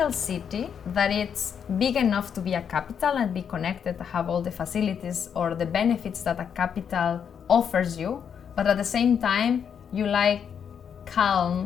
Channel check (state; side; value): quieter; right; 7.7 dB